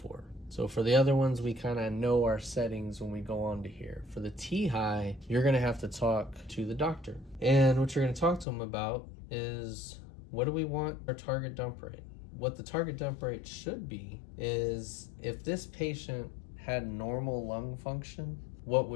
So for the other ones, we kind of know our settings when we go on to here. For the T high, you're going to have to talk to the doctor. And what you're going to talk to them about is, what do we want our target dump rate? What the target dump rate should be is, if this patient had normal lung function, what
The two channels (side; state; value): right; drops out; at 8.5 s